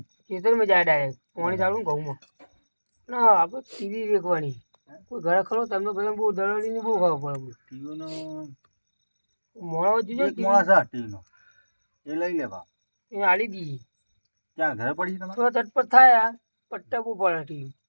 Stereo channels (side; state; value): both; inverted; correlation -1.00